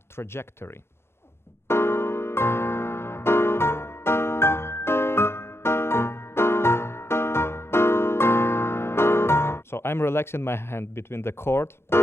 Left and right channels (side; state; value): right; late; 0.12 ms